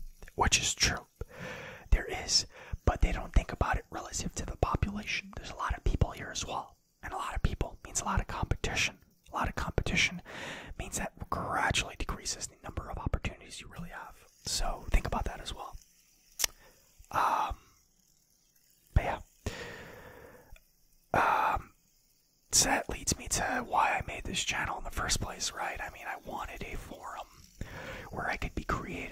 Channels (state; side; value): identical; both; correlation 1.00